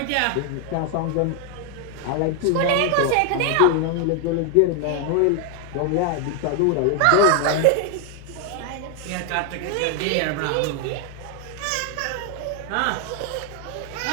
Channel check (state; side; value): different; both; correlation 0.00